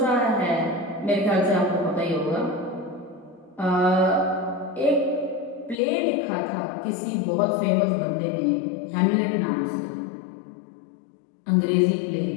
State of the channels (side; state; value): right; drops out; at 5.8 s